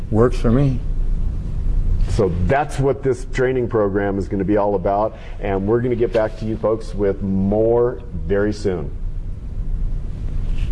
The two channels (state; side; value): identical; both; correlation 1.00